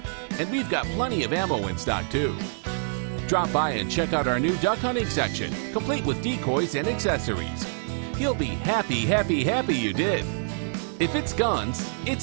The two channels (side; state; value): left; silent; 61 dB below the other